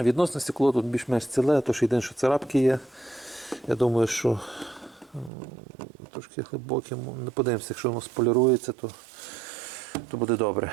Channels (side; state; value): left; drops out; at 5.3 s